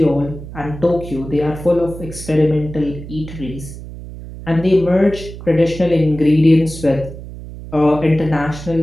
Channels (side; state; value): right; noise; hum, 13 dB below the sound